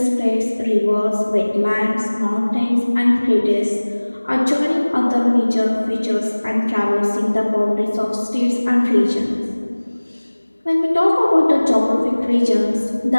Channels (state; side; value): inverted; both; correlation -1.00